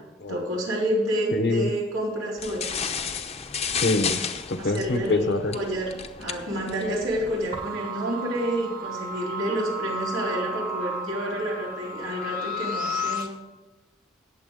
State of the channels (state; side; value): normal; both; correlation 0.45